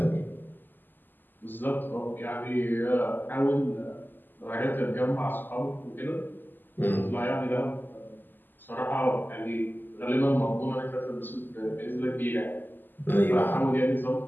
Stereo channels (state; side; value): late; right; 0.089 ms